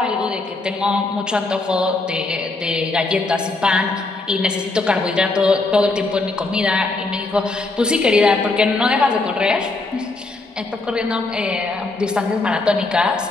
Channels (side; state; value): right; quieter; 3.3 dB